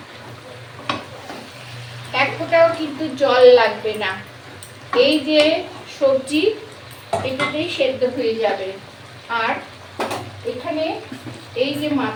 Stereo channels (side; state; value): both; identical; correlation 1.00